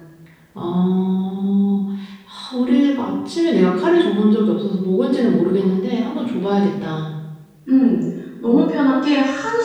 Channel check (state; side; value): identical; both; correlation 1.00